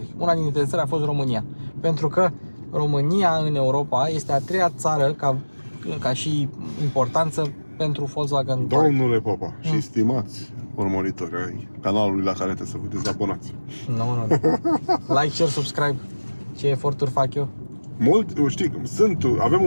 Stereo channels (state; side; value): inverted; both; correlation -1.00